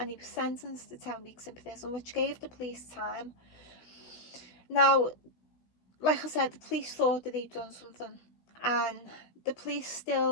he was sentenced to 10 weeks in prison, which gave the police time. Now, like I said, the police thought that he'd done something, and the police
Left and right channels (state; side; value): late; right; 17 ms